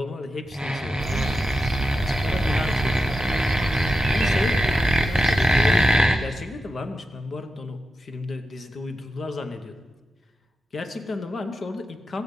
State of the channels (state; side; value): normal; both; correlation 0.90